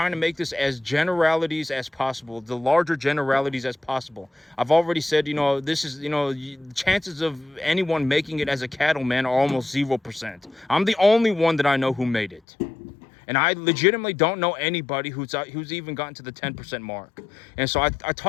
to make this as generalities as possible, the larger generalities as possible. I've already said, this is, the chances of anyone making it as a cattleman are almost 0%. I'm the only one that I know who made it. And I legitimately don't know anybody who's even gotten to the 10% mark. And so I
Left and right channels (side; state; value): right; drops out; at 12.4 s